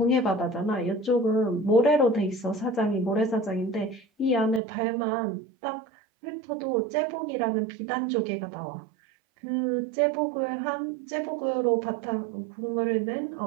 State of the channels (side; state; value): left; drops out; at 4.6 s